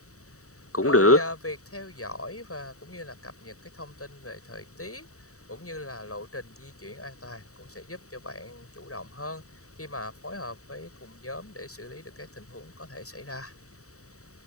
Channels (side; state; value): right; late; 0.65 ms